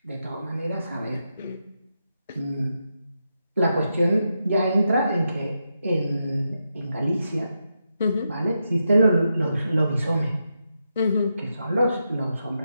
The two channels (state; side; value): inverted; both; correlation -0.85